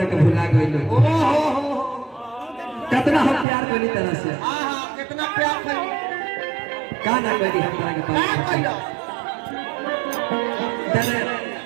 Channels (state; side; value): drops out; left; at 3.5 s